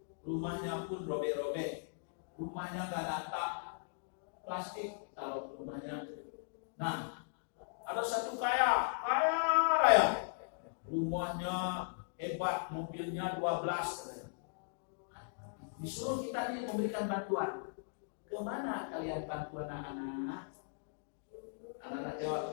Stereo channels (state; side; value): silent; right; digital silence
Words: rumahnya pun robek-robek, rumahnya nggak ada atap, plastik taruh rumahnya. Nah, ada satu kaya raya, rumahnya hebat, mobilnya 12. Disuruh kita ini memberikan bantuan. Kemana kalian bantu anak-anak? Anak-anak